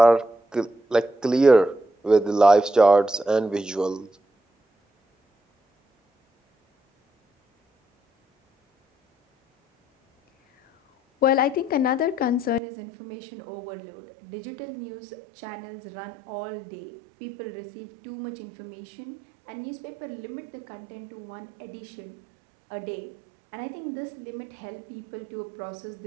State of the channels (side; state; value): left; drops out; at 12.6 s